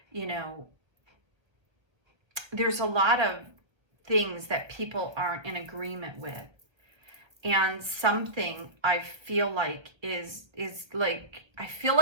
you know, there's a lot of things that people aren't in agreement with. And something I feel like is like, I feel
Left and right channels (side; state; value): left; late; 1.2 ms